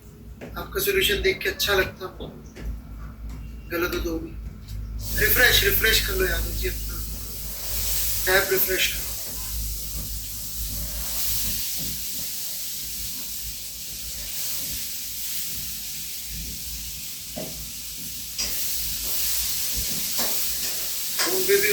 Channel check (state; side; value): identical; both; correlation 1.00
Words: आपका सॉल्यूशन देख के अच्छा लगता, गलत हो तो भी रिफ्रेश कर लो यादव जी, अपना टैब रिफ्रेश करो। फोन पे भी